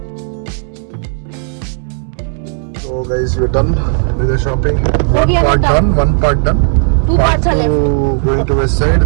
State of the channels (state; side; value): silent; left; digital silence